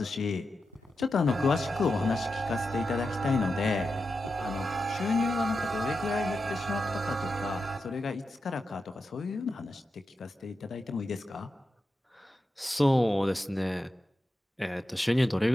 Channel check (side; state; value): both; normal; correlation 0.89